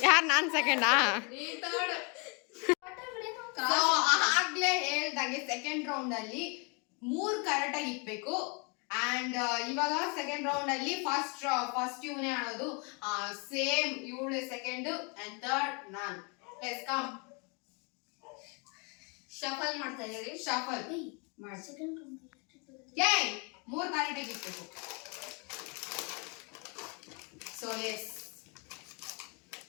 ಯಾರು ನಾನು ಸೆಕೆಂಡಾ ಆಗ್ಲೇ ಹೇಳ್ದಂಗೆ ಸೆಕೆಂಡ್ ರೌಂಡ್ ಅಲ್ಲಿ 3 ಕರೆಕ್ಟ್ ಆಗಿ ಇಕ್ಬೇಕು ಅಂಡ್ ಇವಾಗ ಸೆಕೆಂಡ್ ರೌಂಡ್ ಅಲ್ಲಿ ಫಸ್ಟ್ ಇವನೇ ಆಡೋದು ಸೇಮ್ ಇವಳು ಸೆಕೆಂಡ್ ಅಂಡ್ ಥರ್ಡ್ ನಾನು ಲೆಟ್ಸ್ ಕಮ್ ಶಫಲ್ ಮಾಡ್ತಾ ಇದೀವಿ ಶಫಲ್ ಮಾಡಿ ಏ 3 ಕರೆಕ್ಟ್ ಆಗಿ ಇಕ್ಬೇಕು ಸೊ ಎಸ್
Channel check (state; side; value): quieter; right; 33.2 dB